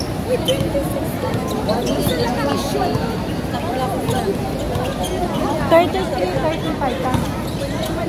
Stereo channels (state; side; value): identical; both; correlation 1.00